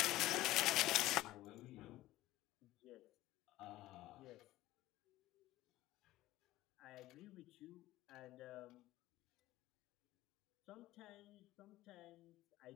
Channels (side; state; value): right; quieter; 16.4 dB